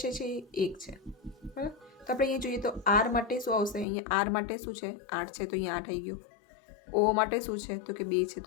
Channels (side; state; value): right; drops out; at 3.9 s